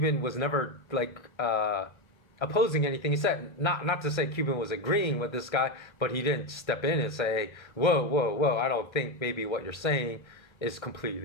was never opposing anything he said. Not to say Cuban was agreeing with this guy, but he didn't step in and say, whoa, I don't think maybe what you're saying is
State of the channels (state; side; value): late; right; 1.3 ms